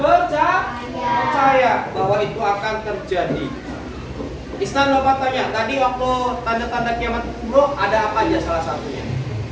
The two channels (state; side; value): identical; both; correlation 1.00